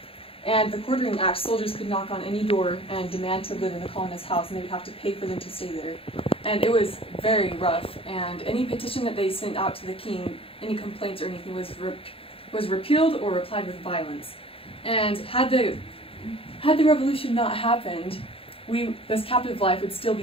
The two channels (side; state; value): right; late; 0.27 ms